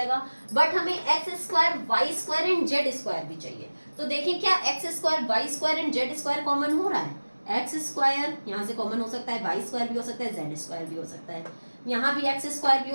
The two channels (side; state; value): both; inverted; correlation -1.00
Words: बट हमें x square y square and z square भी चाहिए। तो देखें क्या x square y square and z square common हो रहा है, x स्क्वायर यहाँ से कॉमन हो सकता है, y स्क्वायर भी हो सकता है, z स्क्वायर भी हो सकता है, यहाँ भी x स्क्वायर भी